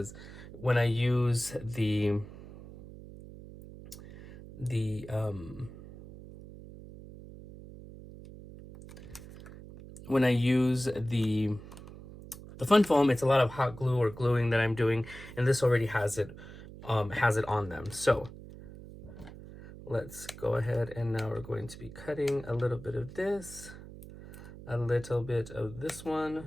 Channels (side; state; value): right; noise; hum, 15 dB below the sound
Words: when I use the fun foam, it's a lot of hot glue or gluing that I'm doing, and this already has it on them. So let's go ahead, and now we're going to be cutting a little bit of this, a little bit of this